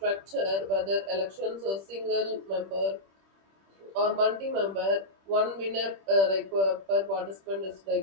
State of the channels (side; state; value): left; late; 26 ms